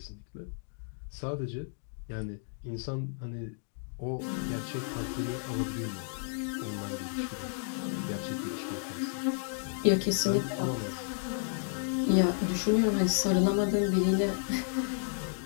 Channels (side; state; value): right; silent; digital silence